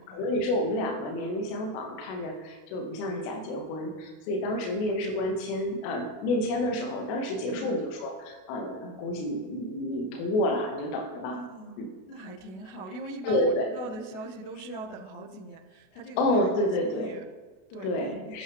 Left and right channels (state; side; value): late; right; 32 ms